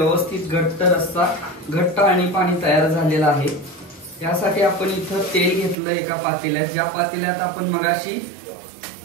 घट्ट रस्सा घट्ट आणि पाणी तयार झालेलं आहे. यासाठी आपण इथं तेल घेतलं एका पातेल्यात. ज्या पातेल्यात आपण मगाशी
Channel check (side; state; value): left; drops out; at 5.8 s